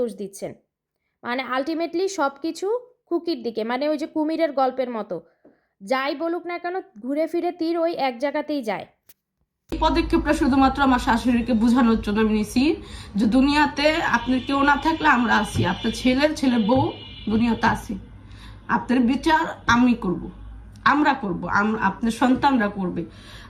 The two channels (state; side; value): identical; both; correlation 1.00